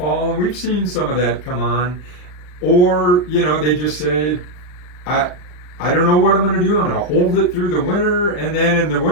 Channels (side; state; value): right; late; 40 ms